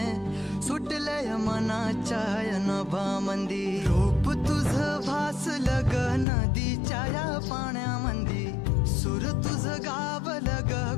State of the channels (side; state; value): right; drops out; at 6.2 s